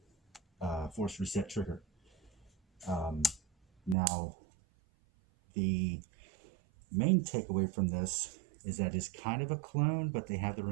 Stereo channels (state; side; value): drops out; left; at 4.0 s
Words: force reset trigger. Now, the main takeaway from this is that it's kind of a clone, but they have their